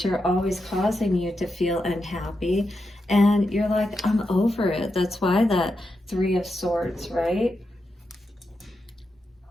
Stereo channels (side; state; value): both; normal; correlation 0.87